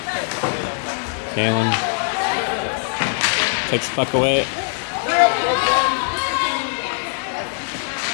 Kalen takes the puck away.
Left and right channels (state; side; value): silent; right; 59 dB below the other